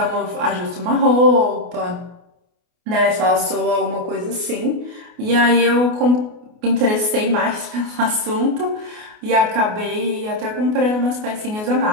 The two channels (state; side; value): late; left; 28 ms